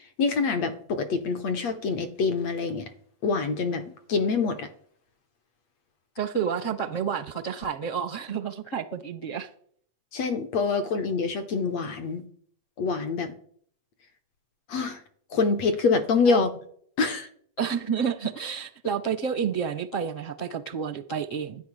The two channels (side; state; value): right; late; 8.5 ms